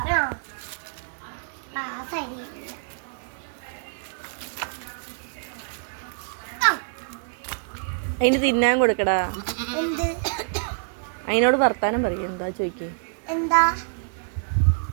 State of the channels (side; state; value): left; silent; 61 dB below the other